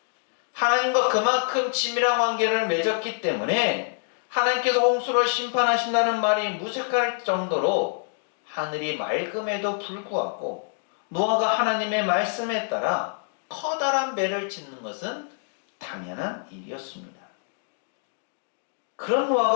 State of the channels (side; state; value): right; silent; 61 dB below the other